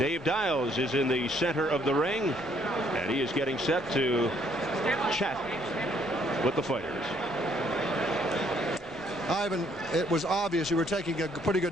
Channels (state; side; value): normal; both; correlation 0.66